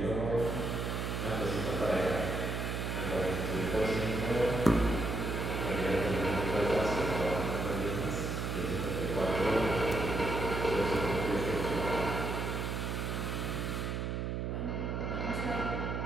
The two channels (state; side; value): noise; right; hum, 2 dB below the sound